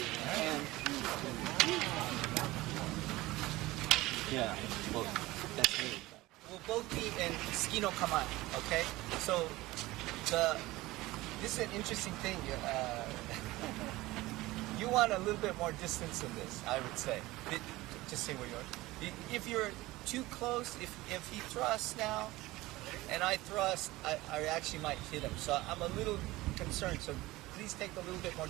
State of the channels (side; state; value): left; quieter; 19.0 dB